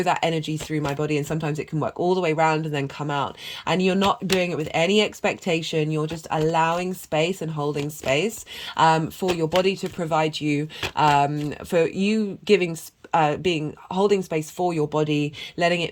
that energy through my body. And sometimes it can work all the way around and then come out, and you're not doing it with any expectation. You're just allowing space and holding space for your body to provide you, for you giving being holding space for your body, letting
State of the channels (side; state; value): both; identical; correlation 1.00